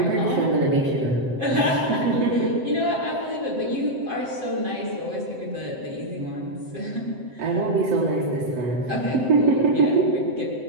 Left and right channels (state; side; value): late; left; 7.7 ms